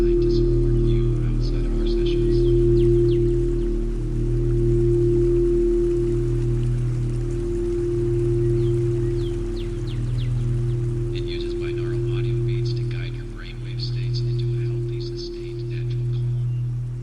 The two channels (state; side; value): identical; both; correlation 1.00